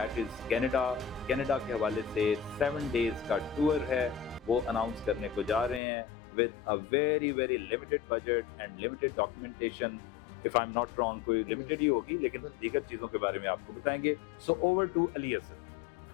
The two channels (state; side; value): drops out; right; at 5.8 s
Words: इज कनाडा। कनाडा के हवाले से 7 डेज का टूर है, वो अनाउंस करने को जा रहे हैं with a very very limited budget and limited documentation. If I am not wrong, कोई लिमिटेड ही होगी, लेकिन दीगर चीज़ों के बारे में आपको बताएंगे। So over to Ali Asad.